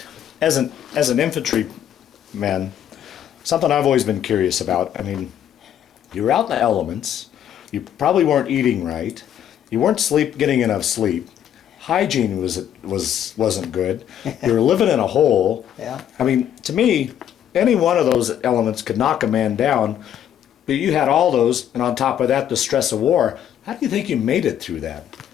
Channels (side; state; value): right; quieter; 10.2 dB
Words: As an infantryman, something I've always been curious about. I mean, you were out in the elements. You probably weren't eating right. You weren't getting enough sleep. Hygiene wasn't good. You were living in a hole. Yeah. I mean, to me, any one of those elements could knock a man down. But you had all those, and on top of that, the stress of war. How do you think you made it through that?